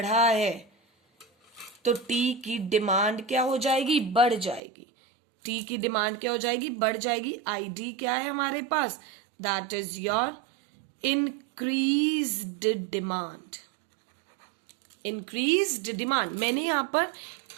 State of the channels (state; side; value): drops out; left; at 4.6 s